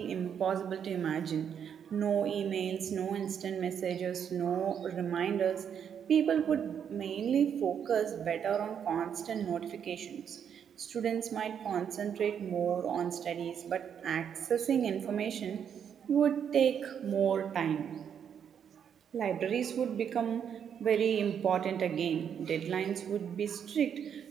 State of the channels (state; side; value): quieter; left; 8.1 dB